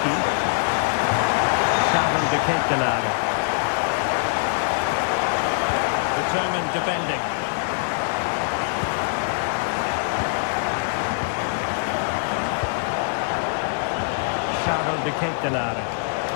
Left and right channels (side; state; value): right; silent; 63 dB below the other